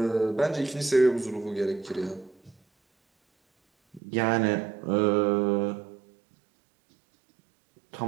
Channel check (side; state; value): left; drops out; at 4.0 s